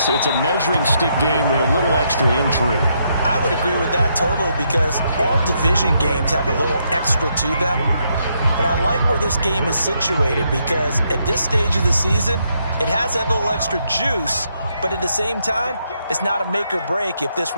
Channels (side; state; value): both; inverted; correlation -0.77